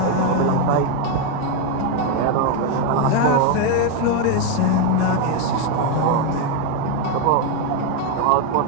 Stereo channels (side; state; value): both; different; correlation 0.02